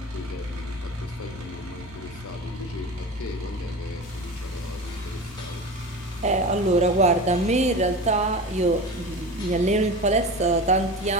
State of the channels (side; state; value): both; normal; correlation 0.30